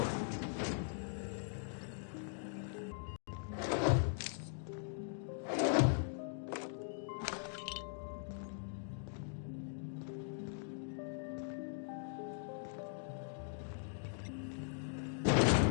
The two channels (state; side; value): silent; right; digital silence